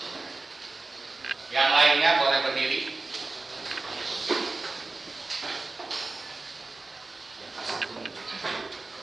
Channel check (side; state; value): left; quieter; 3.4 dB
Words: Yang lainnya boleh berdiri.